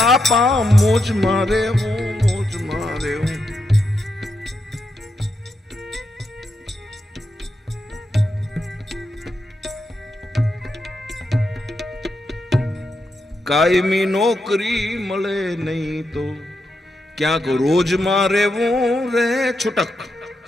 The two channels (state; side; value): normal; both; correlation 0.84